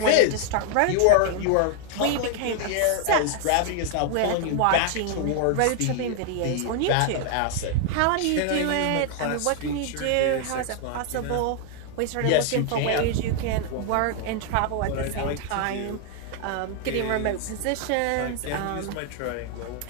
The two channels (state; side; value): different; both; correlation 0.00